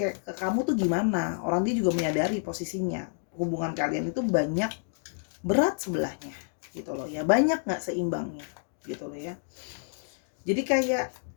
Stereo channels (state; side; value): silent; right; digital silence